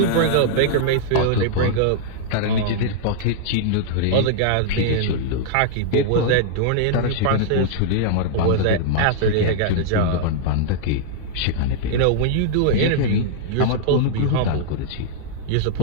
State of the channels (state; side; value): different; both; correlation -0.01